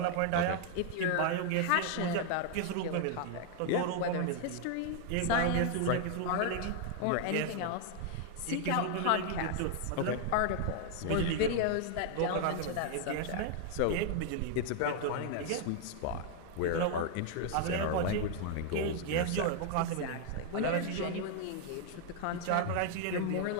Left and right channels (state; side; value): different; both; correlation 0.00